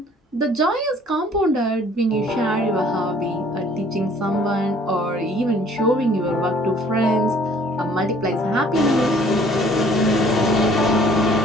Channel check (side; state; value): both; normal; correlation 0.56